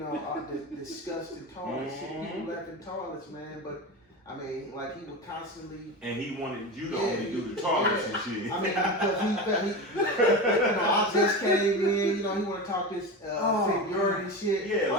all the disgusting toilets, shit people left in toilets, man. But I mean, like he would constantly. And he wanted you to only do the toilets and shit. I mean, because he I just came in, he want to talk this seniority shit. Yeah,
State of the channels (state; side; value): normal; both; correlation 0.24